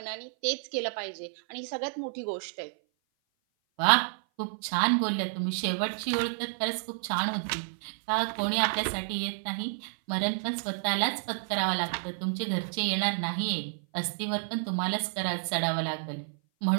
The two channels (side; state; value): left; silent; 56 dB below the other